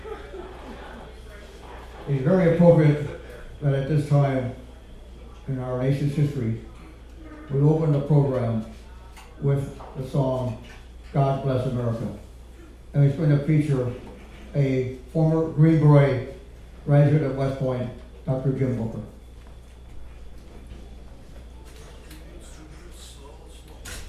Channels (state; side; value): identical; both; correlation 1.00